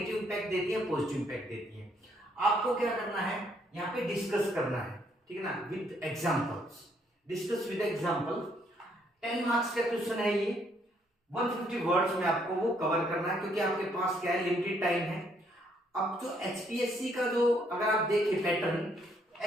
इंपैक्ट देती है, पॉजिटिव इंपैक्ट देती है। आपको क्या करना है, यहाँ पे डिस्कस करना है, ठीक है ना, with examples. Discuss with example. 10 marks का क्वेश्चन है ये, 150 वर्ड्स में आपको वो कवर करना है, क्योंकि आपके पास क्या है, लिमिटेड टाइम है। अब जो एचपीएससी का जो अगर आप देखें पैटर्न,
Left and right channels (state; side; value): normal; both; correlation 0.70